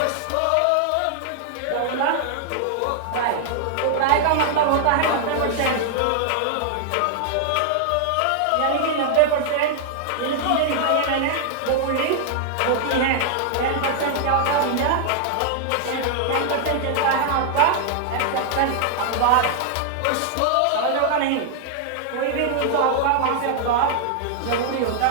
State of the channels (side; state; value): both; different; correlation 0.00